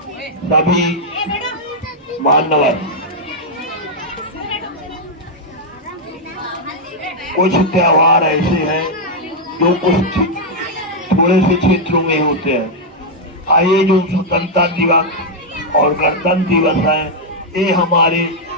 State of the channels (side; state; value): both; normal; correlation -0.03